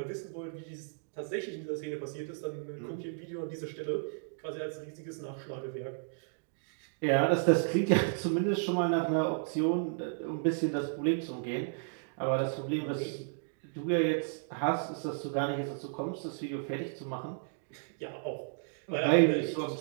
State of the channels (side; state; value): left; silent; digital silence